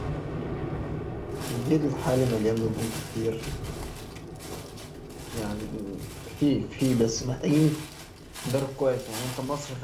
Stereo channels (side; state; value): both; identical; correlation 1.00